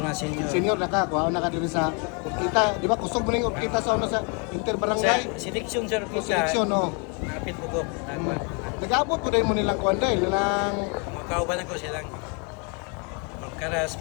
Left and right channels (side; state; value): right; quieter; 35.7 dB